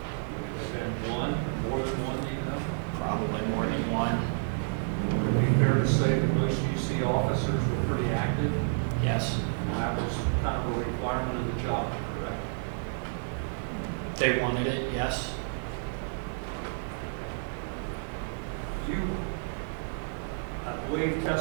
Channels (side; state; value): left; silent; digital silence